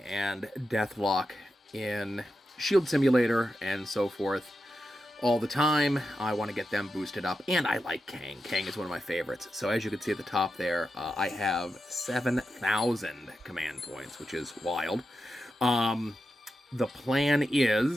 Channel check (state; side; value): normal; both; correlation 0.89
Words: Deathlock in Shield Simulator and so forth all the time. I want to get them boosted up, and I like Kang. Kang is one of my favorites. So as you can see at the top there, I have 7,000 command points, which is wild. The plan